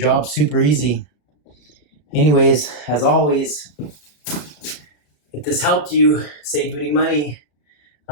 super easy. Anyways, as always, if this helped you, saved you any money,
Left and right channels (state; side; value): late; right; 34 ms